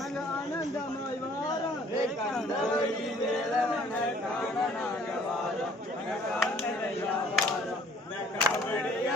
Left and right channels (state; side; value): normal; both; correlation 0.57